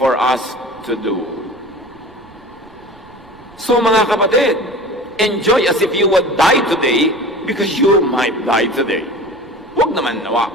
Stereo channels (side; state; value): right; noise; rumble, 26 dB below the sound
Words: us to do. So mga kapatid, enjoy as if you would die today because you might die today. Huwag naman nawa.